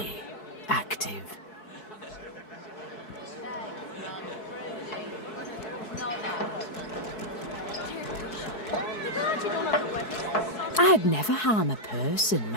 active. I'd never harm a person,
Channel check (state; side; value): late; right; 4.7 ms